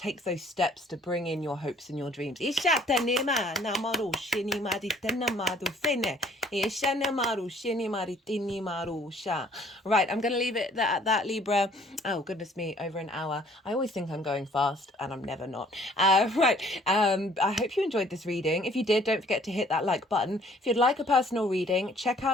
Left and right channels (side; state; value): both; normal; correlation 0.58